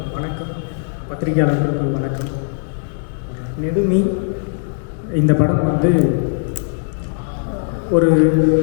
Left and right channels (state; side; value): silent; right; digital silence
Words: பத்திரிகையாளர்களுக்கு வணக்கம். நெடுமி இந்த படம் வந்து ஒரு